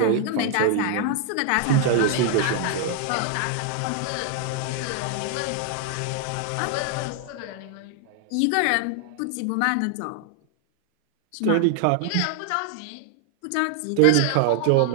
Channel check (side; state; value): both; different; correlation 0.00